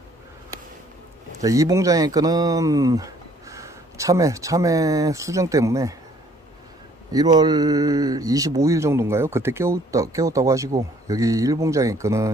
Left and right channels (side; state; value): both; normal; correlation 0.60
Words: 자, 이 봉장의 끈은 참외 수정 때문에 1월 25일 정도인가요? 그때 깨웠다고 하시고, 여기 1봉장의